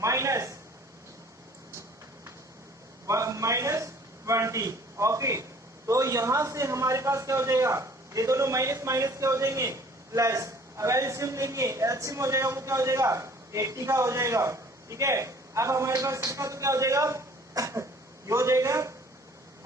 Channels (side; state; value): both; normal; correlation 0.53